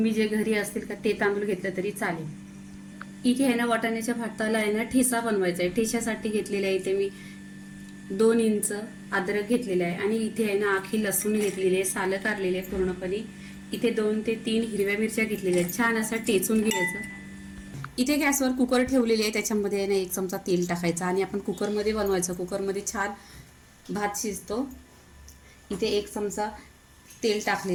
जे घरी असतील का ते तांदूळ घेतलं तरी चालेल। इथे आहे ना वाटाण्याच्या भाताला आहे ना ठेचा बनवायचा आहे। ठेच्यासाठी घेतलेला आहे इथे मी 2 इंच अद्रक घेतलेला आहे आणि इथे आहे ना आखी लसूण घेतलेली आहे, सालं काढलेले आहे पूर्णपणे। इथे 2 ते 3 हिरव्या मिरच्या घेतलेल्या आहेत। छान असं टेचून घ्यायचं। इथे गॅसवर कुकर ठेवलेली आहे, त्याच्यामध्ये आहे ना 1 चमचा तेल टाकायचं आणि आपण कुकरमध्ये बनवायचं। कुकरमध्ये छान भात शिजतो। इथे 1 चमचा तेल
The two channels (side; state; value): both; identical; correlation 1.00